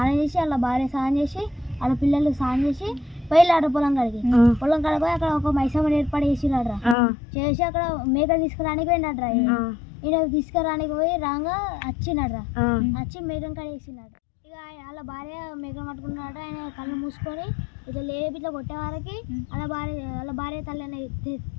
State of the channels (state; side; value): drops out; right; at 7.0 s